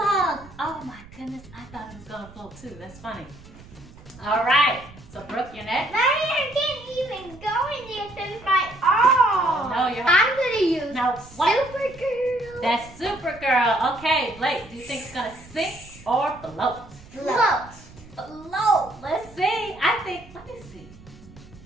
Oh my goodness, I thought it was gonna float too. That's funny. All right, so Brooke, you're next. I can't even go in there since my arm. No, you're. I'm gonna use Now what? Supergirl. That's Supergirl. Okay, Blake, do you think it's gonna sink or float? Float. Float. Let's see. Let me see.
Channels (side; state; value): right; noise; rumble, 21 dB below the sound